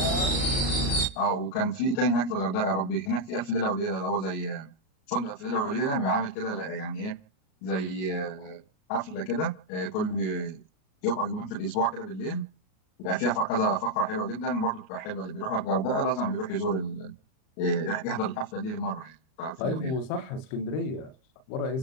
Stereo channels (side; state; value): right; late; 38 ms